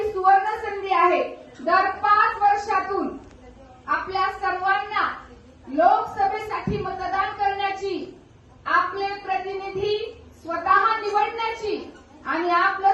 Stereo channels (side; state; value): both; identical; correlation 1.00